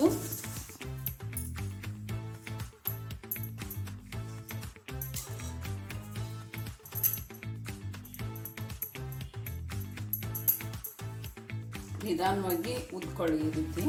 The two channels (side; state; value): both; identical; correlation 1.00